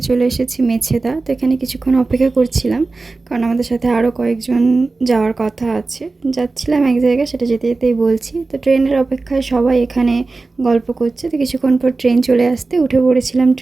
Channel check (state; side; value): quieter; left; 3.6 dB